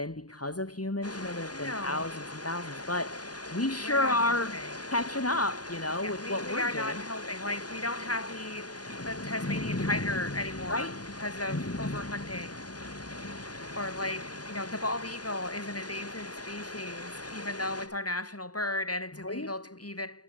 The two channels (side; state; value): right; late; 0.68 ms